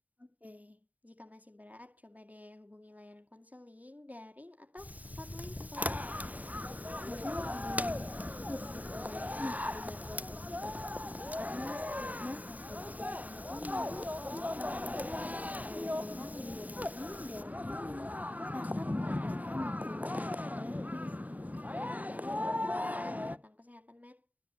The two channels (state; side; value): late; left; 0.074 ms